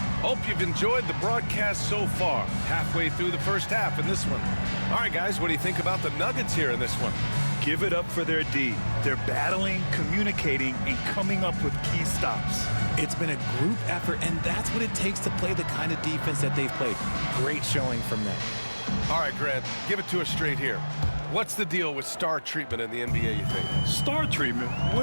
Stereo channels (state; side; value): inverted; both; correlation -1.00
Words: Hope you've enjoyed the broadcast so far. Halfway through the first half in this one. All right, guys, what do you think about the Nuggets here in this one? Give it up for their D. They're battling, communicating, and coming up with key stops. It's been a group effort, and that's what it takes to play the kind of defense that they've played. Great showing from them. All right, Grant, give it to us straight here. What's the deal with star treatment in the NBA, you think? Star treatment?